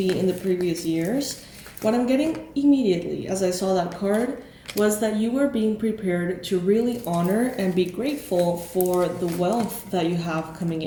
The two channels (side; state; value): both; identical; correlation 1.00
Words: in the previous years, what I'm getting immediately as I saw that card was that you were being prepared to really honor and be grateful for the wealth that you have coming